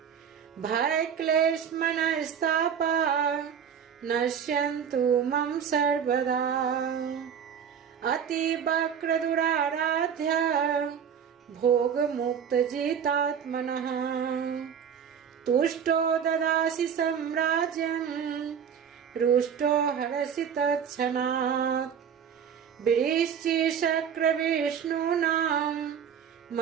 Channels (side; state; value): left; quieter; 7.8 dB